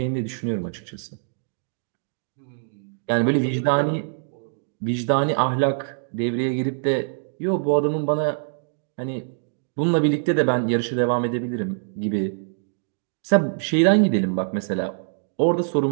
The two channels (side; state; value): left; silent; digital silence